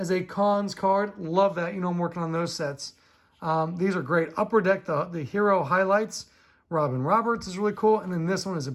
a Cons card. Love that. You know, I'm working on those sets. These are great. Upper Deck, the Hero Highlights. Robin Roberts is really cool. And then this one is a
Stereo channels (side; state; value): both; identical; correlation 1.00